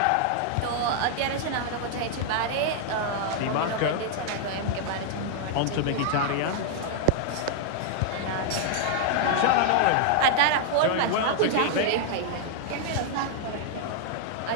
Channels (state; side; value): different; both; correlation -0.01